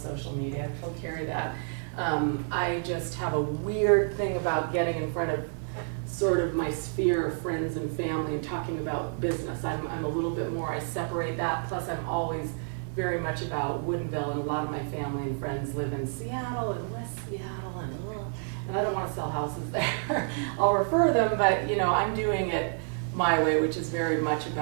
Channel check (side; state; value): left; silent; 55 dB below the other